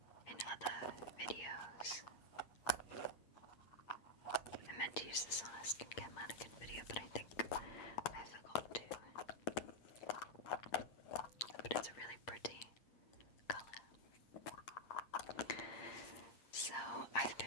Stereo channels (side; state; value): right; late; 8.6 ms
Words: in other videos. I meant to use this on a skincare mannequin video, but I think I forgot to. But it's a really pretty colour. So I've